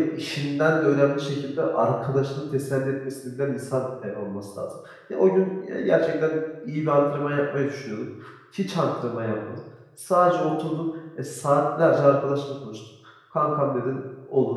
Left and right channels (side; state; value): both; identical; correlation 1.00